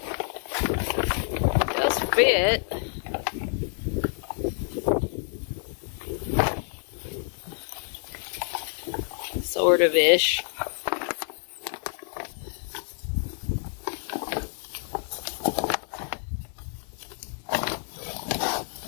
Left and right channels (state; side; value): silent; right; digital silence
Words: It does fit. Sort of ish.